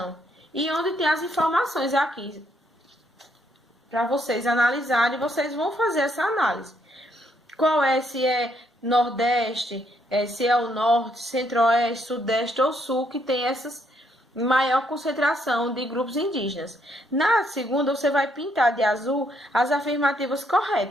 E onde tem as informações aqui, para vocês analisarem, vocês vão fazer essa análise. Se é Nordeste, se é o Norte, Centro-Oeste, Sudeste ou Sul, que tem essas maior concentração de grupos indígenas. Na segunda, você vai pintar de azul as afirmativas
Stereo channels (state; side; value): normal; both; correlation 0.73